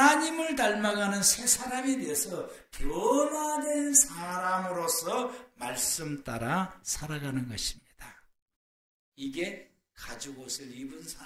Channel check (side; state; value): both; identical; correlation 1.00